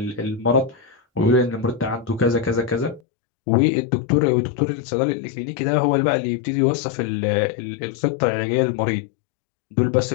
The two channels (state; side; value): drops out; right; at 3.0 s